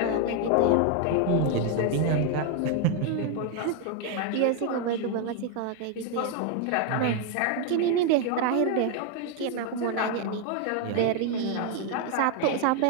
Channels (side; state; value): both; different; correlation 0.01